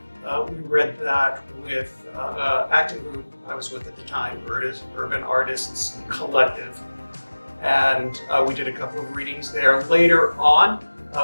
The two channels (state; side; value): inverted; both; correlation -1.00